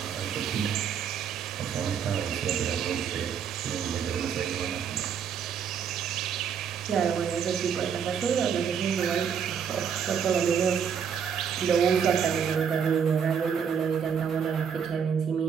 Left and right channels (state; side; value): quieter; left; 7.4 dB